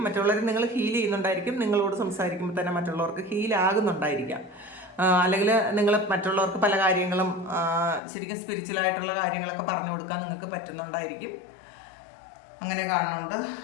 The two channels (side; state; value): right; drops out; at 8.0 s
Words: മറ്റുള്ളവരെ നിങ്ങൾ ഹീൽ ചെയ്യുന്നുണ്ടായിരിക്കും. നിങ്ങളോട് സംസാരിക്കുമ്പോൾ തന്നെ മറ്റുള്ളവർക്ക് ഹീലാകുന്നുണ്ടായിരിക്കാം. അല്ലെങ്കിൽ നിങ്ങൾ മറ്റുള്ളവർക്ക് പല കാര്യങ്ങളും ശരിക്കും സ്പിരിച്വലായിട്ടുള്ള കാര്യങ്ങളൊക്കെ പറഞ്ഞു കൊടുക്കാൻ നിങ്ങൾക്ക് പറ്റുന്നുണ്ടായിരിക്കും. അങ്ങനെ കാണുന്നുണ്ട്.